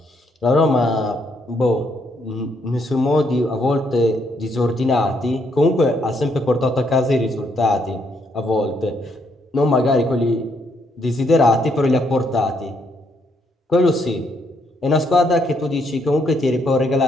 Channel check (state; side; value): normal; both; correlation 0.73